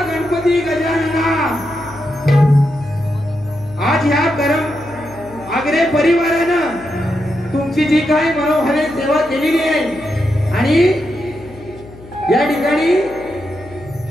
गणपती गजानना, आज या गरम आगरे परिवारानं तुमची जी काही मनोभावे सेवा केलेली आहे आणि या ठिकाणी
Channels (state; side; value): noise; left; hum, 19 dB below the sound